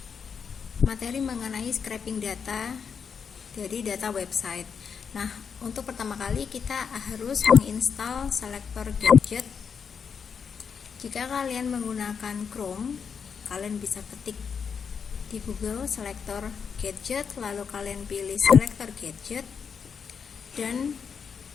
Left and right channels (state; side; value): quieter; right; 6.5 dB